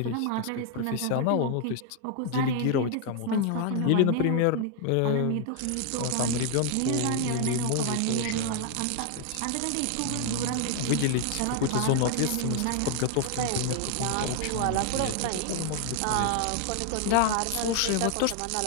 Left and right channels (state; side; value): different; both; correlation 0.00